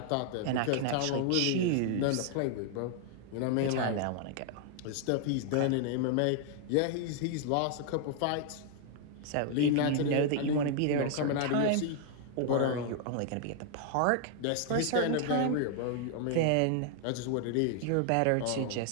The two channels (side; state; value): both; different; correlation 0.00